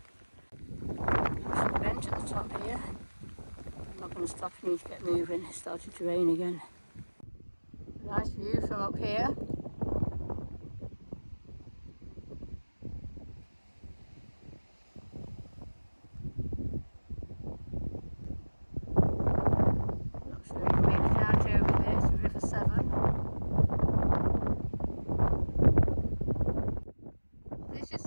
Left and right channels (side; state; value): both; inverted; correlation -1.00